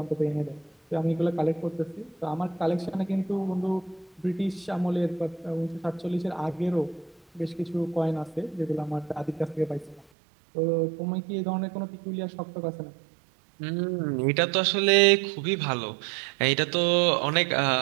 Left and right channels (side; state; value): left; drops out; at 10.1 s